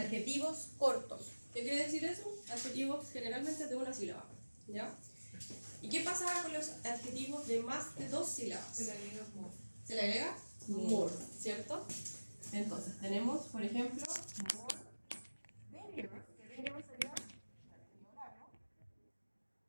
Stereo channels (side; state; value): both; inverted; correlation -1.00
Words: cortos. ¿Qué quiere decir eso? Adjetivos generalmente de una sílaba. ¿Ya? ¿Y qué pasaba con los adjetivos de más de dos sílabas? Se le agrega more. Se le agrega more, ¿cierto? Entonces, tenemos, por ejemplo, more dangerous, que dangerous sería